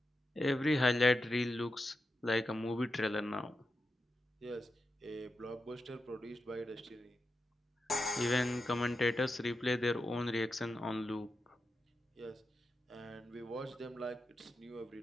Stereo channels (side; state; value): both; normal; correlation 0.88